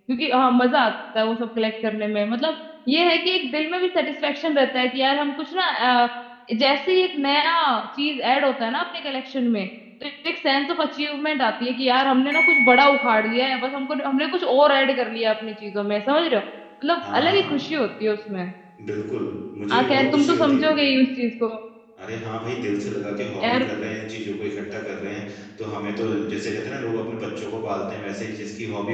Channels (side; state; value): both; identical; correlation 1.00